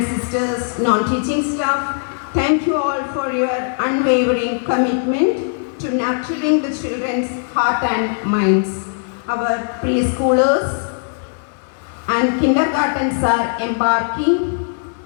sisters, non-teaching staff. Thank you all for your unwavering commitment to nurturing the children's heart and minds. Our preschoolers and kindergartens are embarking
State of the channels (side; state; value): right; silent; 67 dB below the other